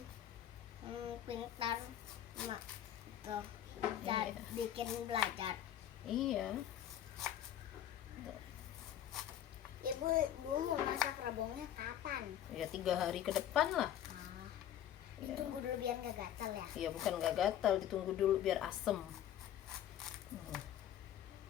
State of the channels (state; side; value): quieter; right; 10.9 dB